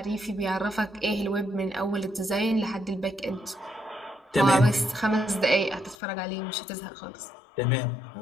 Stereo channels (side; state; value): right; drops out; at 6.0 s